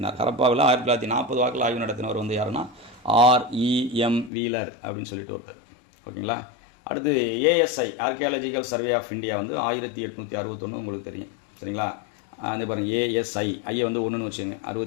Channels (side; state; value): right; drops out; at 4.3 s